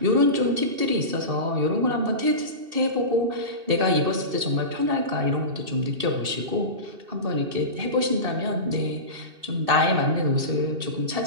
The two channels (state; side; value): late; left; 2.6 ms